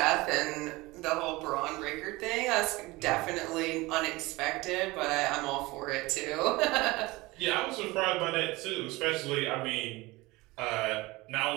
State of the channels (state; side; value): quieter; left; 21.5 dB